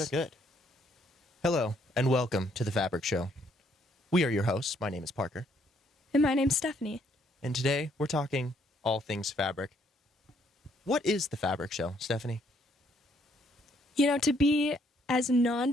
good. Hello, and welcome to The Fabric Show. We are your hosts. My name is Parker. And my name's Stephanie. And today, we're talking all things fabric. What is The Fabric Show, Stephanie? You know, to be as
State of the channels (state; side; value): normal; both; correlation 0.68